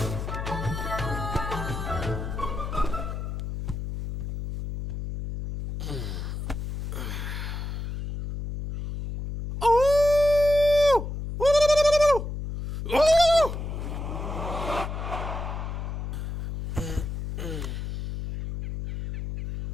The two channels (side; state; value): left; noise; hum, 5 dB below the sound